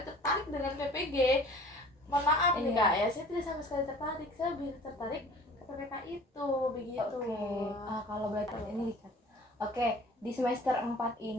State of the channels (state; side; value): normal; both; correlation 0.47